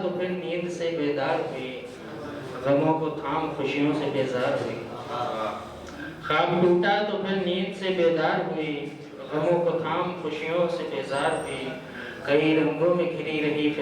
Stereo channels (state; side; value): identical; both; correlation 1.00